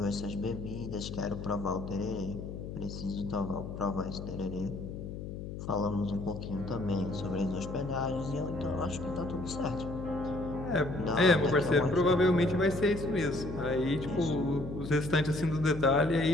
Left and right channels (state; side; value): noise; left; hum, 8 dB below the sound